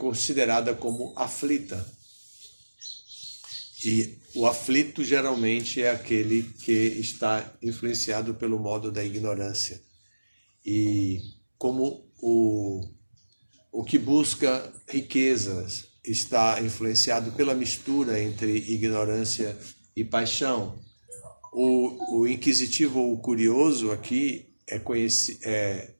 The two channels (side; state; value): both; inverted; correlation -1.00